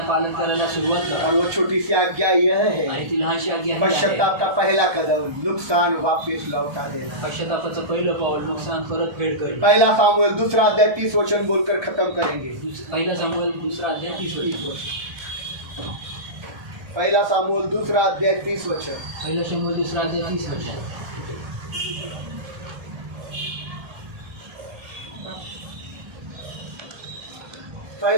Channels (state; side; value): late; left; 1.2 ms